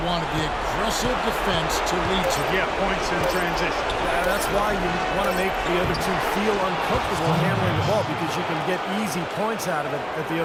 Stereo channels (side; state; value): both; identical; correlation 1.00